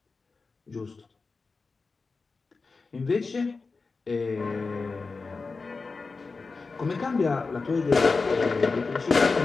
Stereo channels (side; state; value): right; quieter; 4.2 dB